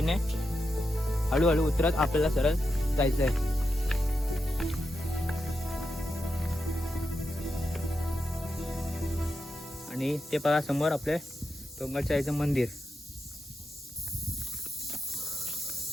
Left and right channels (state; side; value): normal; both; correlation 0.87